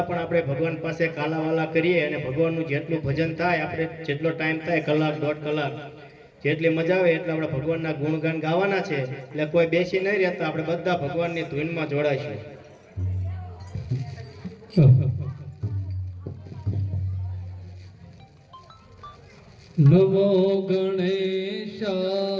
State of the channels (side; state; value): both; identical; correlation 1.00